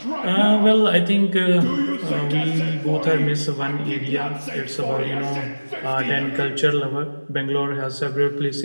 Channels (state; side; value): inverted; both; correlation -1.00